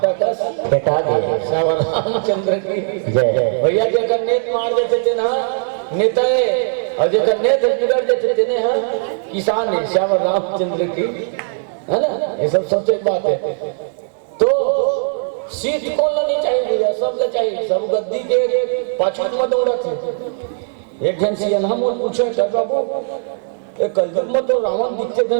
का बेटा गए श्याम रामचंद्र की जय। भैया जगह नेत मार देते थे ना नेता और जगह नेत बिगड़ देते थे ना किसान है श्याम रामचंद्र की है ना ये सब सबसे बात है। तो सीट कौन नहीं चाहिए सब ले चाहिए सब गद्दी के पाछू में दौड़ा थे। एक जन से यहाँ मोल पूछे कर बाबू ये कलयुग में तो रावण दिखते थे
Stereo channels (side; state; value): left; silent; 67 dB below the other